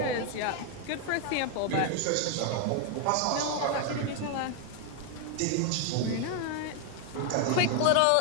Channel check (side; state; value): both; different; correlation 0.00